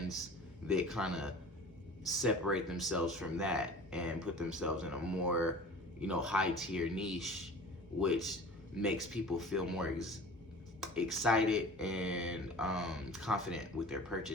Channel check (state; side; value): normal; both; correlation 0.41